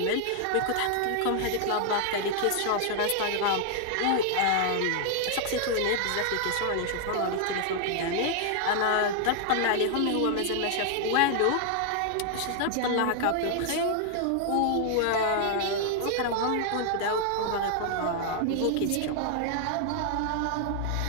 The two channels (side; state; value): both; different; correlation 0.00